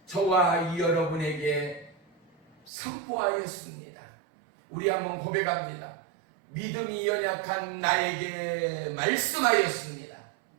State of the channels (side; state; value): left; drops out; at 2.7 s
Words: 저와 여러분에게 선포하였습니다. 우리 한번 고백합니다. 믿음이 연약한 나에게 말씀하였습니다.